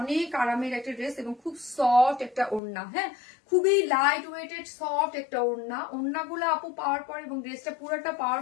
অনেক আরামের একটা ড্রেস, এবং খুব সফট একটা ওড়না, হ্যাঁ, খুবই লাইট ওয়েটেড সফট একটা ওড়না। ওড়নাগুলো আপু পাওয়ার পরে এবং ড্রেসটা পুরোটা পাওয়ার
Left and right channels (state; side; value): drops out; right; at 2.6 s